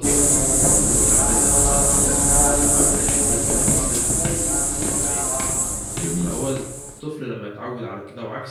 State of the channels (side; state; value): both; identical; correlation 1.00